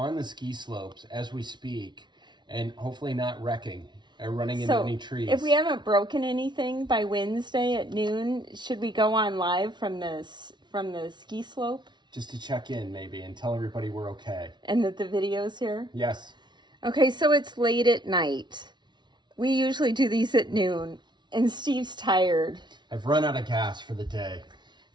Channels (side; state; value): left; late; 0.21 ms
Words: the ski slopes as we speak, and hopefully not wrecking or running into any trees. If we haven't broken anything by Wednesday at noon, should we go on live from the ski slope? Just to check in, maybe, and tell everybody we're okay. And that the video's here? Yes. Okay, so it's late at night. We usually do these at noon, and Steve's tired. I've run out of gas for the day.